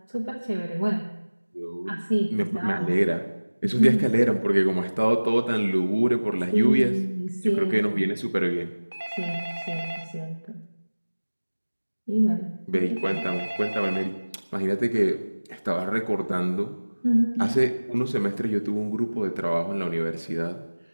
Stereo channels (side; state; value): both; inverted; correlation -1.00